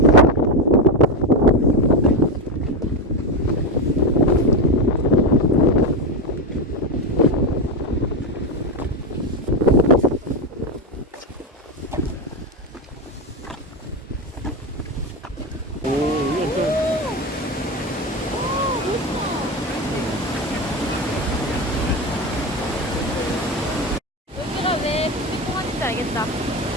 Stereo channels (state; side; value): normal; both; correlation 0.13